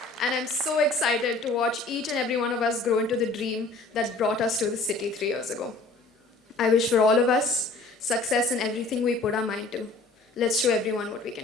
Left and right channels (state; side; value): quieter; right; 3.3 dB